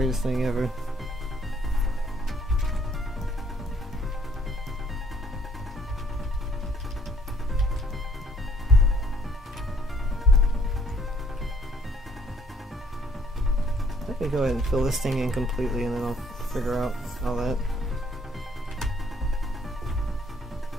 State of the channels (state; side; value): normal; both; correlation 0.63